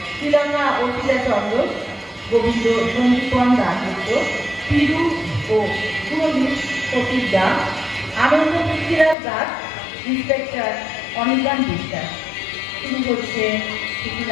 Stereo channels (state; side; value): drops out; right; at 9.2 s